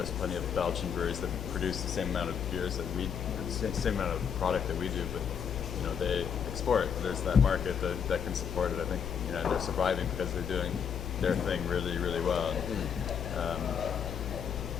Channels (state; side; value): quieter; right; 7.4 dB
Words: plenty of Belgian breweries that produce the same amount of beers that we, the same amount of product that we do, but they export. There's that market that can support it. I think and they're surviving because they're doing their thing really, really well.